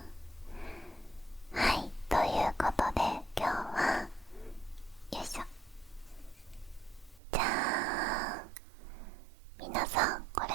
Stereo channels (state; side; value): drops out; left; at 7.2 s